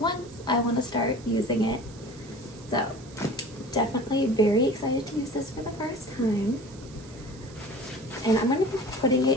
I want to start using it. So definitely very excited to use this for the first time. And I'm going to be putting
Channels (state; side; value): noise; right; hiss, 22 dB below the sound